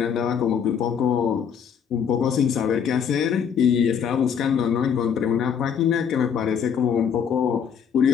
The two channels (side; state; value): right; quieter; 7.5 dB